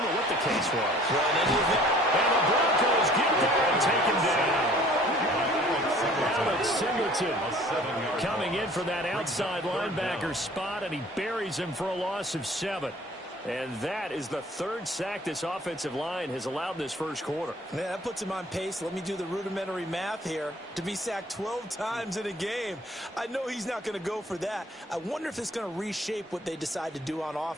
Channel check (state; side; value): normal; both; correlation 0.52